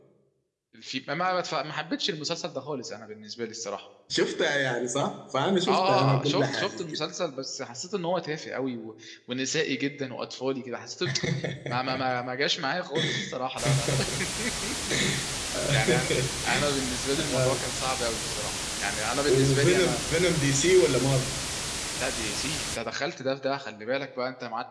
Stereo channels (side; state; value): both; identical; correlation 1.00